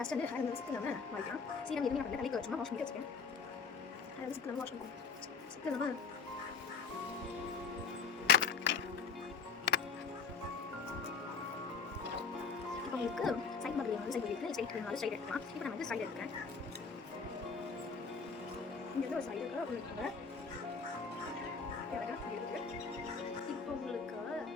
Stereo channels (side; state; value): right; quieter; 5.1 dB